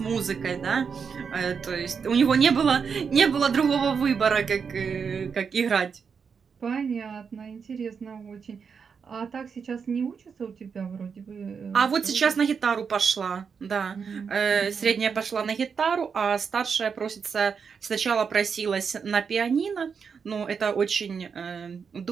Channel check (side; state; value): left; quieter; 6.1 dB